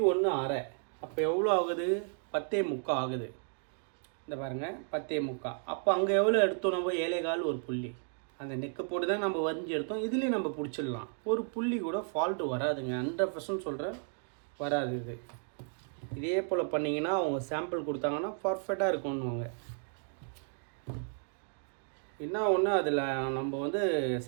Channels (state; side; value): silent; left; 55 dB below the other